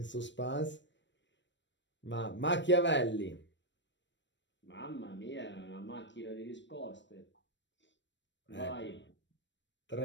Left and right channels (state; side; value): late; right; 0.53 ms